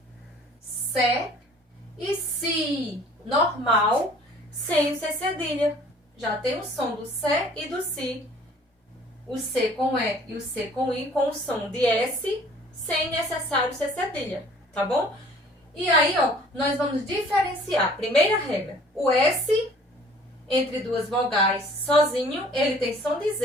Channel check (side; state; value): both; normal; correlation 0.53